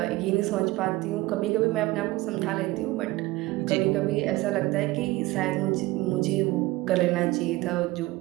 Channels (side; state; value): left; quieter; 19.2 dB